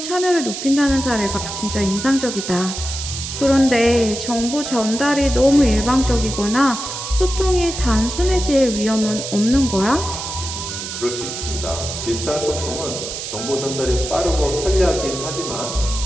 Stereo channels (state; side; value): noise; right; hiss, 7 dB below the sound